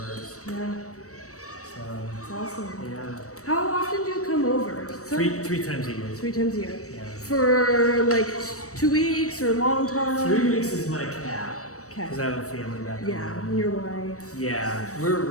Yeah. So, It's awesome. yeah. How often do you come over? Three times a year. 3 times a year. Yeah. For like 2 weeks or a long time? 3 weeks is my cap. Okay. Because I have a family back home. Yeah, and your wife. Yeah, we're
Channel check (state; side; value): late; right; 0.65 ms